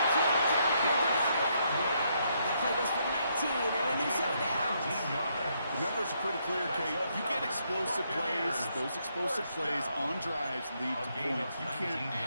Downfield to Godwin. That play goes for 19 clear, Kate. You get explosive plays. Those explosive plays on drives lead to points. You can't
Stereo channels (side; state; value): both; inverted; correlation -0.75